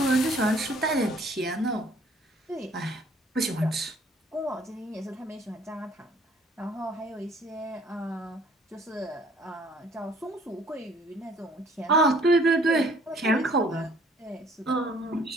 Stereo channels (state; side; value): normal; both; correlation 0.58